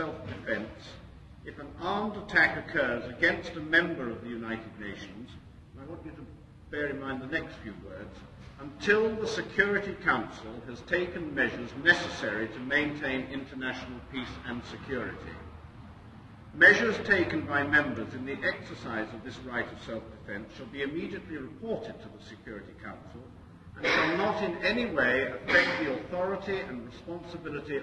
if an armed attack occurs against a member of the United Nations," and I want you to bear in mind the next few words, "until the Security Council has taken measures necessary to maintain international peace and security. Measures taken by members in the exercise of this right of self-defence shall be immediately reported to the Security Council and shall not in any way affect the authority and responsibility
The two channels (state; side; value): identical; both; correlation 1.00